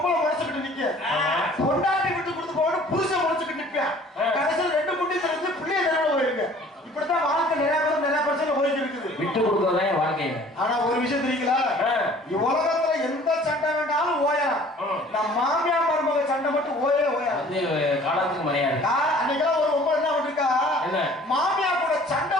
முறைச்சுக்கிட்டு நிக்க, பொண்டாட்டி விட்டு கொடுத்து போவான்னு புருஷன் முறைச்சுக்கிட்டு நிற்பான். கடைசியில் 2 முட்டி தெரிஞ்சு பிள்ளைய தெருவில் போயிருக்கு. இப்படித்தான் வாழ்க்கை நிறைய பிரச்சனை போயிட்டு இருக்குது. விட்டு கொடுத்ததே வாழ்க்கை. ஆனா ஒரு விஷயம் தெரியுங்களா, உலகத்துல எந்த சண்டை வேண்டாலும் ஓயலாம். நம்ம மாமியார் மருமக சண்டை மட்டும் ஓயாது. காலத்துக்கு மரியாதை. அன்னைக்கெல்லாம் ஒரு பொம்பளை என்ன பண்ணிருக்கா, மாமியார் கூட சண்டை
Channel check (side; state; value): both; normal; correlation 0.51